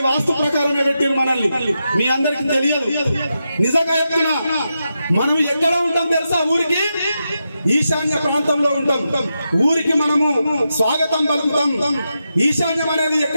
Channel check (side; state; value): both; inverted; correlation -0.87